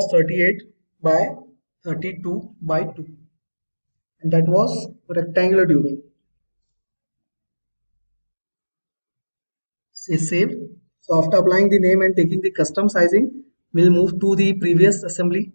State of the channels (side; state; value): both; inverted; correlation -1.00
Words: 38 by 32 by 2 and that was rectangular tubing. Say save. So after applying the name and taking the custom sizing, we'll move to the previous assembly,